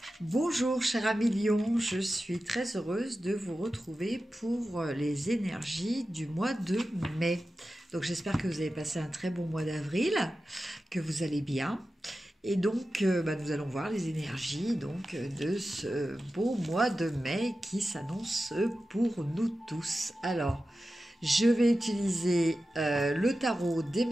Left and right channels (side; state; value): both; normal; correlation 0.93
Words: Bonjour cher ami Lion, je suis très heureuse de vous retrouver pour les énergies du mois de mai. Donc j'espère que vous avez passé un très bon mois d'avril, que vous allez bien. Et donc nous allons voir les énergies de ce beau mois de mai qui s'annonce pour nous tous. Alors je vais utiliser le tarot des